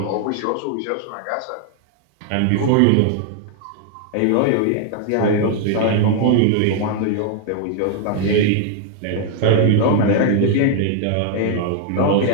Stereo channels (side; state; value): both; different; correlation 0.00